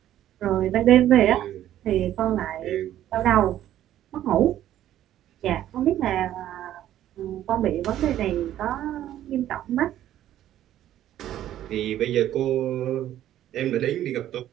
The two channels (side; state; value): left; quieter; 12.3 dB